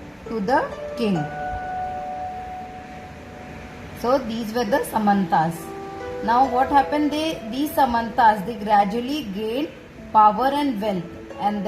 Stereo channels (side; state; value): both; identical; correlation 1.00